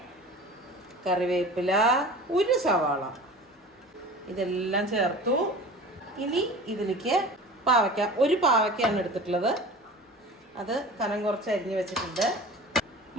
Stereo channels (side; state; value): both; normal; correlation 0.39